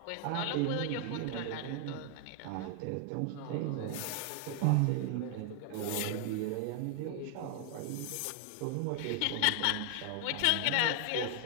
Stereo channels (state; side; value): different; both; correlation 0.00